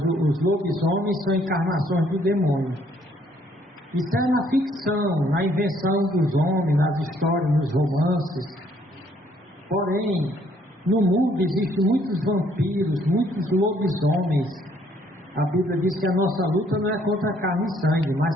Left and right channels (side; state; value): both; normal; correlation 0.65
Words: lobisomens são encarnações do demônio. Isso é na ficção, na invenção dos homens, nas histórias, nos romances. Porém, no mundo existem muitos vampiros, muitos lobisomens. A Bíblia diz que a nossa luta não é contra carne e sangue, mas